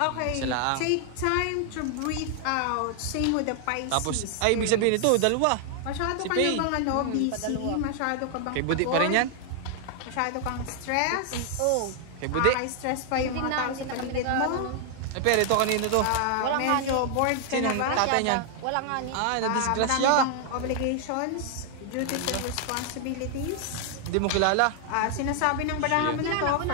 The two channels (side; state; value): both; different; correlation 0.00